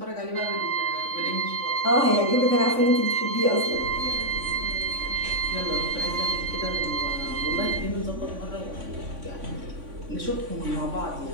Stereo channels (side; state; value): left; late; 3.5 ms